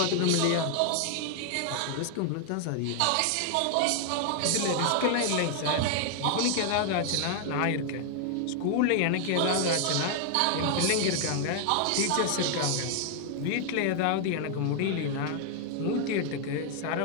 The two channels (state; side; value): different; both; correlation 0.00